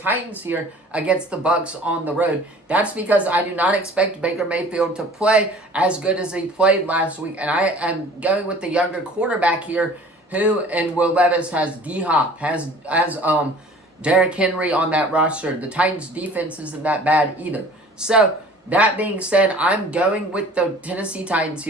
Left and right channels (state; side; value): normal; both; correlation 0.47